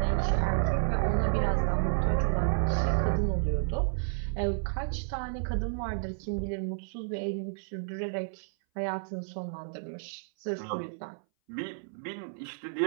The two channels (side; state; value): left; silent; 57 dB below the other